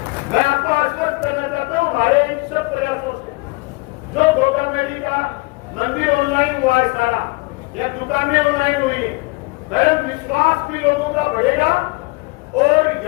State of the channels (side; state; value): right; quieter; 26.4 dB